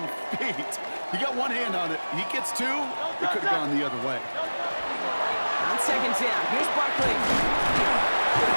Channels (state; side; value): inverted; both; correlation -1.00